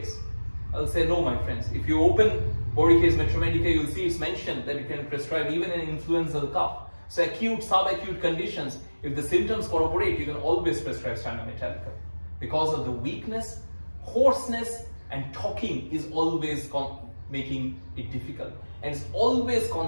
I'll say no, my friends. If you open Borica's Metromedica, you'll see it's mentioned that you can prescribe even an influenza cough. So acute, subacute conditions, if the symptoms corroborate, you can always prescribe Stannum Metallicum. Because of the weakness, hoarseness, and talking is always making it difficult. And it's always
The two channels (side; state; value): both; inverted; correlation -1.00